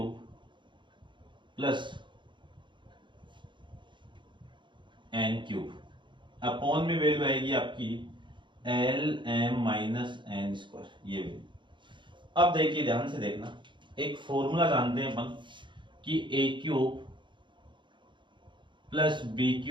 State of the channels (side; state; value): left; late; 0.23 ms